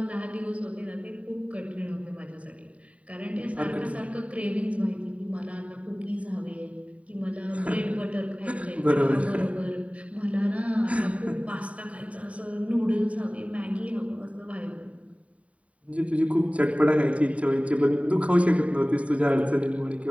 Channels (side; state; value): left; late; 0.066 ms